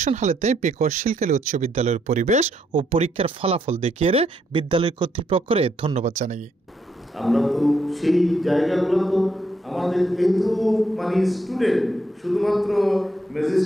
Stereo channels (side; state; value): both; normal; correlation 0.75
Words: হালেতে পেকুয়া শিলকালী উচ্চ বিদ্যালয়ের পরিবেশ ও পরীক্ষার ফলাফল দেখিয়ে বিদ্যালয় কর্তৃপক্ষরে ধন্যবাদ জানাই। আমরা তো সেই জায়গাগুলো তো আমাদের কিন্তু মানে স্টুডেন্ট শুধুমাত্র